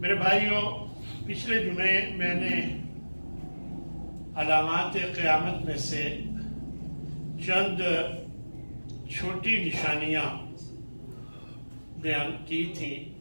میرے بھائیوں، پچھلے جمعے میں نے علامات قیامت میں سے چند چھوٹی نشانیاں بیان کی تھیں۔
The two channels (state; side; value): inverted; both; correlation -1.00